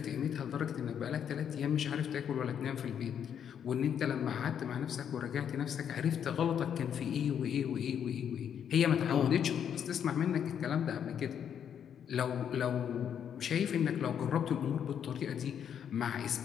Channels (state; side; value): quieter; right; 8.5 dB